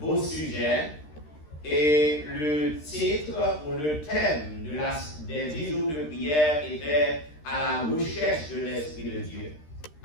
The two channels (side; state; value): right; late; 13 ms